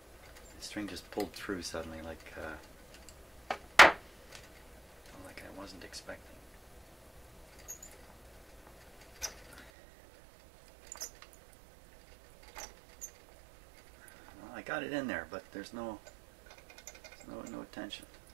The string just pulled through suddenly, like I wasn't expecting. Well, I got it in there, but there's no tension.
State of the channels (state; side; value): drops out; left; at 9.7 s